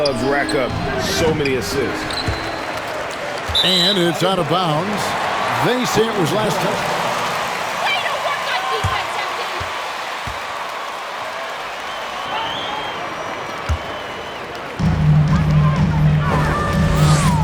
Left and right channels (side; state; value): both; identical; correlation 1.00